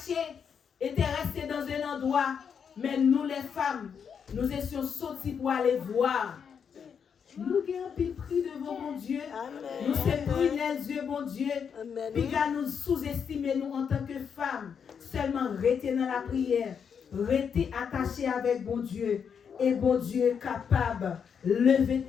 étaient restés dans un endroit. Mais nous les femmes, nous étions sortis pour aller voir. Nous avons pris devant mon Dieu. Amen. Nous sommes pris les yeux, mon Dieu. Puis nous sous-estimer nous en tant que femmes. Seulement rester dans la prière. Rester attachés avec bon Dieu. Et bon Dieu capable. Lever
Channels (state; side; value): quieter; right; 7.0 dB